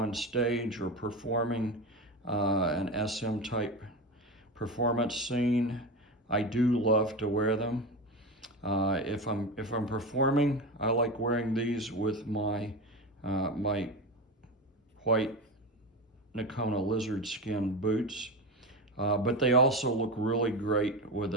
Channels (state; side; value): normal; both; correlation 0.21